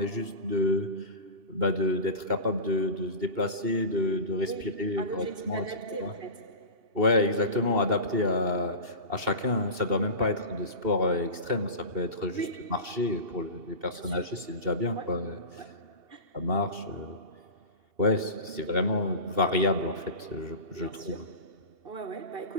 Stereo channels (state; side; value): late; left; 2.7 ms